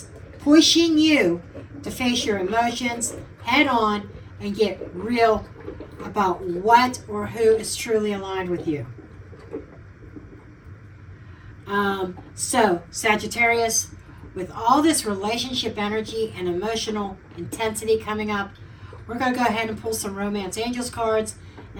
pushing you to face your emotions head on and get real about what or who is truly aligned with you. So, Sagittarius, with all this relationship energy and emotional intensity coming up, we're going to go ahead and pull some Romance Angels cards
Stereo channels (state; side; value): identical; both; correlation 1.00